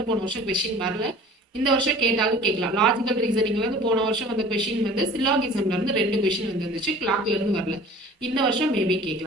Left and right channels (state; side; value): normal; both; correlation 0.45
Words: போன வருஷம் கொஸ்டின் வரல. இந்த வருஷம் கேட்டாலும் கேட்கலாம். லாஜிக்கல் ரீசனிங்ல இருந்து போன வருஷம் வந்த கொஸ்டின் வந்து சில்லாகிசம்ல இருந்து 2 கொஸ்டின் வந்துருந்துச்சு. கிளாக்ல இருந்து வரல. இந்த வருஷம் மேபி